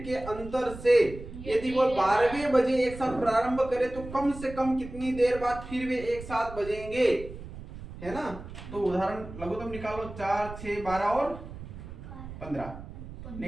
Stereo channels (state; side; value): noise; right; rumble, 13 dB below the sound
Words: के अंतर से यदि वो 12वें बजे एक साथ प्रारंभ करे तो कम से कम कितनी देर बाद फिर वे एक साथ बजेंगे, है ना? तो उदाहरण लघुत्तम निकालो। 4, 6, 12 और 15